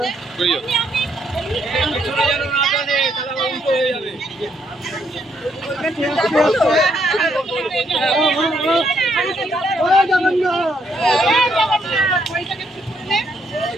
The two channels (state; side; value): normal; both; correlation 0.72